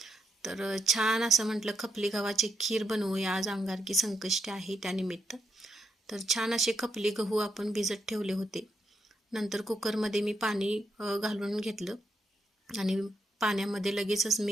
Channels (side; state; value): both; normal; correlation 0.79